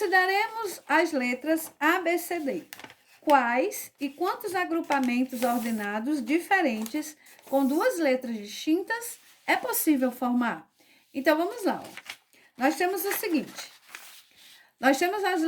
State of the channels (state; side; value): identical; both; correlation 1.00